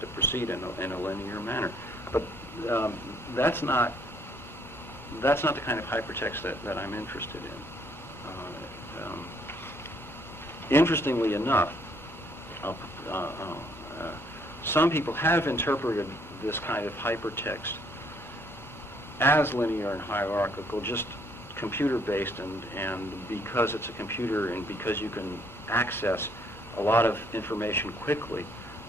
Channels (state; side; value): normal; both; correlation 0.66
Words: to proceed in a linear manner. But that's not the kind of hypertext that I'm interested in. Interestingly enough, some people have interpreted this kind of hypertext as linear and hierarchical, just computer-based, and because it's a computer and because you can access a lot of information quickly,